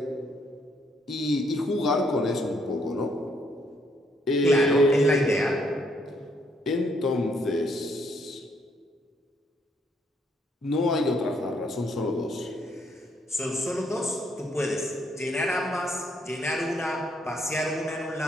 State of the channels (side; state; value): both; normal; correlation 0.71